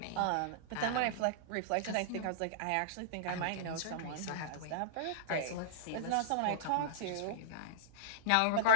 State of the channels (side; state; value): both; different; correlation -0.02